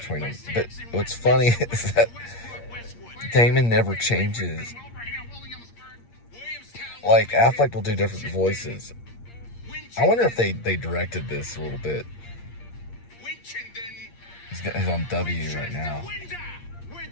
them. But what's funny is that Damon never changes. Like Affleck will do different voices. I wonder if they directed this a little bit. He's on W right now.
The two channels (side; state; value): right; late; 8.6 ms